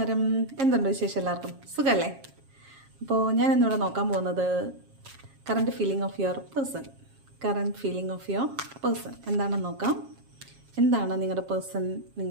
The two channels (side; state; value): left; late; 7.4 ms